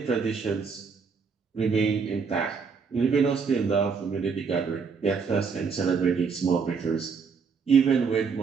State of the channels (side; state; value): left; quieter; 5.5 dB